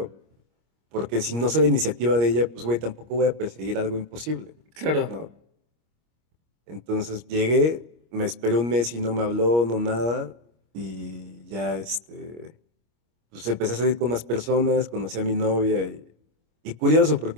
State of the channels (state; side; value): late; left; 25 ms